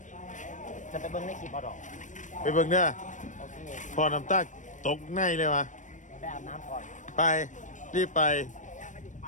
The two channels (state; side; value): late; right; 0.37 ms